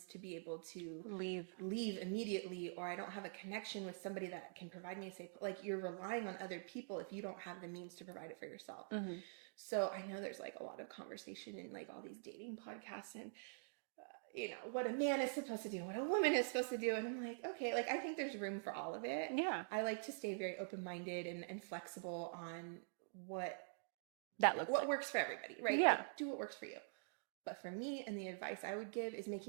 to be able to leave immediately, or I don't have a connection with somebody that can provide me a safe, like you're relying on other people if you don't have the means to provide it for yourself. So I know there's like a lot of conversation in like all these dating podcasts and what a man is supposed to do, what a woman is supposed to do. And I'm like, okay, like I think there's room for all of it. Yeah. I like to stay very open-minded and flexible on what works for everybody, right? Yeah. Like, do what works for you. But for me, and the advice I would give is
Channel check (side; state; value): left; silent; digital silence